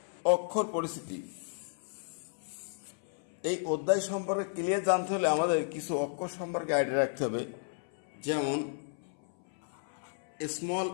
অক্ষর পরিস্থিতি। এই অধ্যায় সম্পর্কে ক্লিয়ার জানতে হলে আমাদের কিছু অক্ষর সম্পর্কে আইডিয়া রাখতে হবে। যেমন স্মল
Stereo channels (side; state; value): right; silent; 56 dB below the other